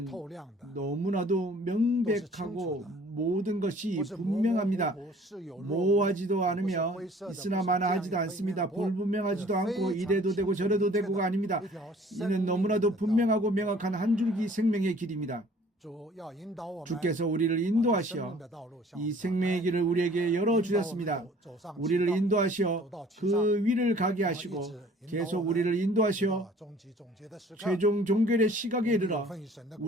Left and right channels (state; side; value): normal; both; correlation 0.53